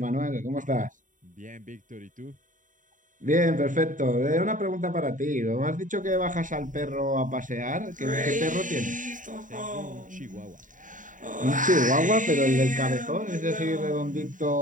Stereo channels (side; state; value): left; late; 0.38 ms